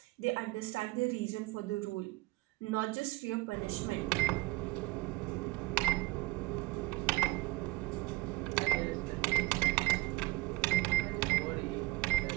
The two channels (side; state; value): left; quieter; 21.2 dB